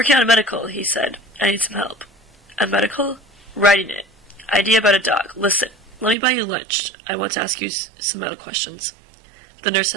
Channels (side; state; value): left; drops out; at 6.2 s